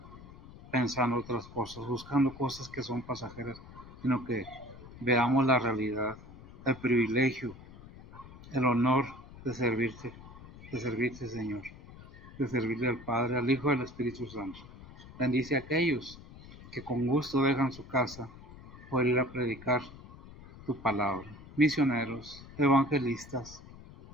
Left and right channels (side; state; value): left; noise; rumble, 18 dB below the sound